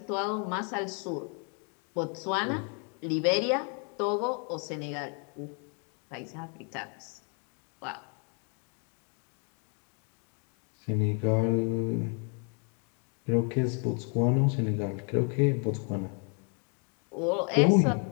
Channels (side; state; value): right; quieter; 39.2 dB